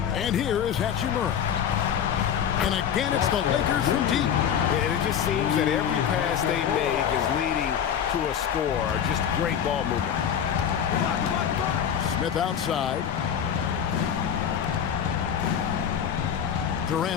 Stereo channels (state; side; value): quieter; right; 8.6 dB